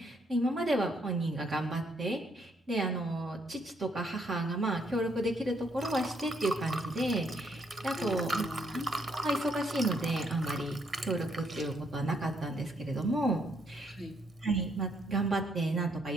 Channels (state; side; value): normal; both; correlation 0.72